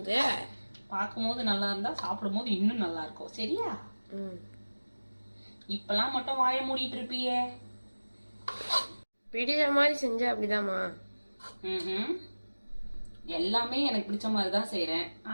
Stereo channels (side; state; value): both; inverted; correlation -1.00